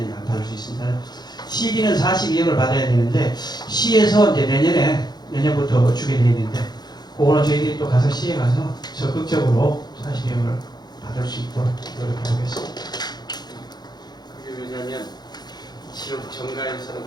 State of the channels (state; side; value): late; right; 0.20 ms